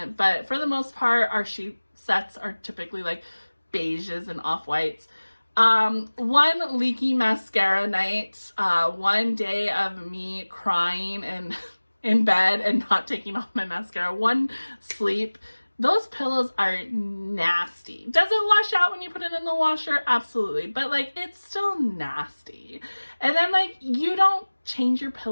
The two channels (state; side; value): inverted; both; correlation -1.00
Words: But for the most part, our sheet sets are typically like beiges and off-whites. One leaky mascara night, one day of me crying and in bed and not taking off my mascara, one sleep. Those pillows are nasty. Does it wash out when you put it in the washer? Absolutely. But like, it's still nasty. And then like, you don't change your